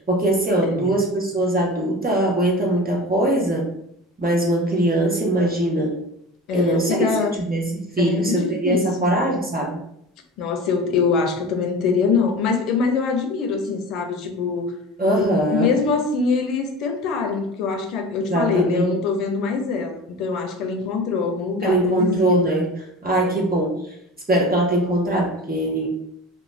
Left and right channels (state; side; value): normal; both; correlation 0.34